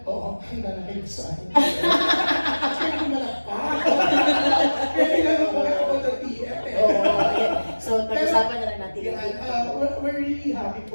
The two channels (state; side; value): inverted; both; correlation -1.00